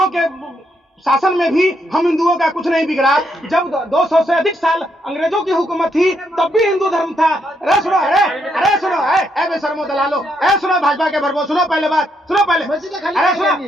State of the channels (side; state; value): both; normal; correlation 0.76